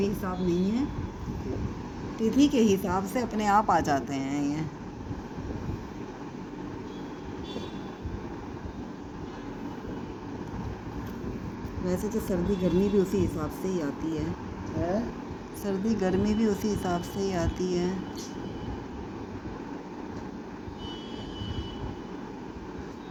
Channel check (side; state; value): both; identical; correlation 1.00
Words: हिसाब नहीं है। तिथि के हिसाब से अपने आप आ जाते हैं ये। वैसे तो सर्दी गर्मी भी उसी हिसाब से ही आती है। हैं? सर्दी गर्मी भी उसी हिसाब से ही आती है।